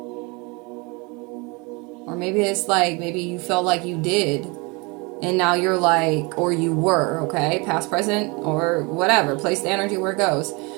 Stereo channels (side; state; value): left; quieter; 28.2 dB